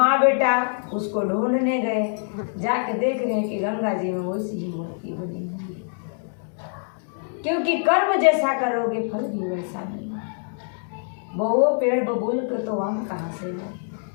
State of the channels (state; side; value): silent; right; 56 dB below the other